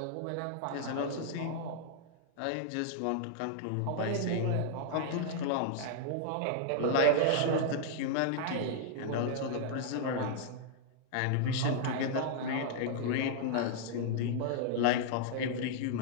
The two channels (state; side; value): different; both; correlation -0.01